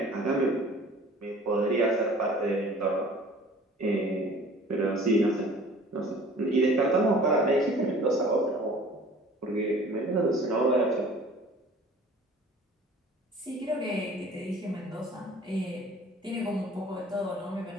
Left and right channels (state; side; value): normal; both; correlation 0.48